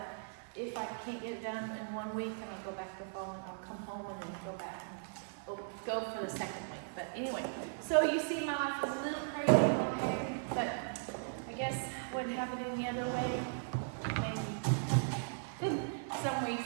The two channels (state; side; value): silent; left; digital silence